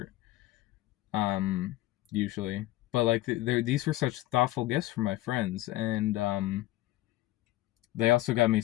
usually. But like these were such thoughtful gifts from my friends, and they also got me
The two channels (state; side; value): quieter; right; 17.0 dB